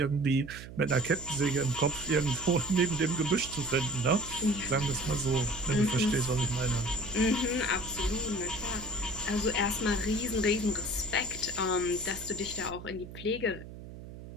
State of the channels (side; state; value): right; noise; hum, 14 dB below the sound